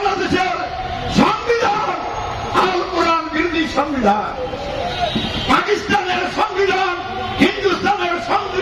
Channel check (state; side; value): identical; both; correlation 1.00